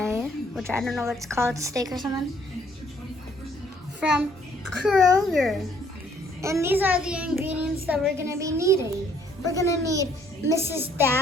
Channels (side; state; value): both; normal; correlation 0.64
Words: which I don't know what it's called, steak or something, from Kroger. And these are the ingredients that we're gonna be needing. We're gonna need Mrs.